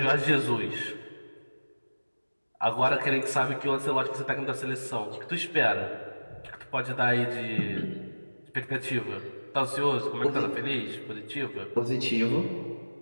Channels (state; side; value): inverted; both; correlation -1.00